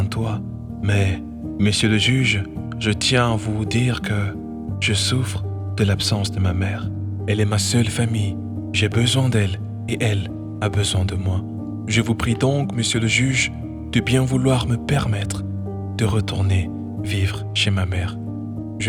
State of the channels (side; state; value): both; identical; correlation 1.00